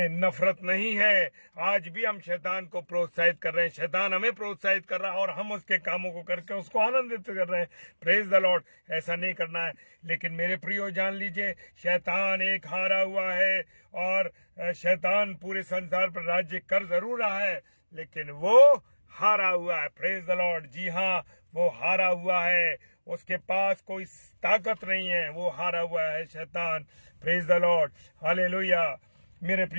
नफरत नहीं है। आज भी हम शैतान को प्रोत्साहित कर रहे हैं, शैतान हमें प्रोत्साहित कर रहा है और हम उसके कामों को करके उसको आनंदित कर रहे हैं। Praise the Lord. ऐसा नहीं करना है। लेकिन मेरे प्रियो जान लीजिए, शैतान एक हारा हुआ है और शैतान पूरे संसार पर राज्य कर जरूर रहा है, लेकिन वो हारा हुआ है। Praise the Lord. जी हाँ, वो हारा हुआ है, उसके पास कोई ताकत नहीं है, वो हारा हुआ है शैतान। Praise the Lord. हालेलुया मेरे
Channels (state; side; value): inverted; both; correlation -1.00